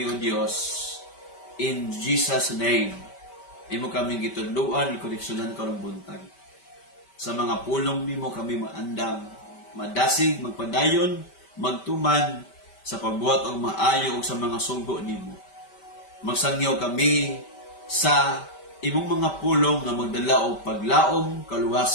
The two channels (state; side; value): late; right; 5.1 ms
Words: o Dios in Jesus' name. Imo kami gitudluan, ikoreksyonan karong buntag. Sa mga pulong nimo kami maandam, madasig, magpadayon, magtuman sa pagbuhat og maayo og sa mga sugo nimo. Magsangyaw kami sa imong mga pulong nga magdala og paglaom,